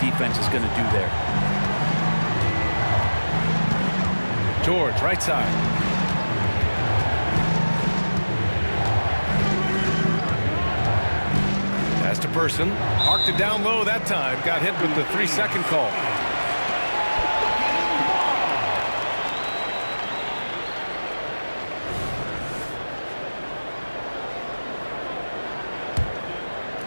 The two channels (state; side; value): inverted; both; correlation -1.00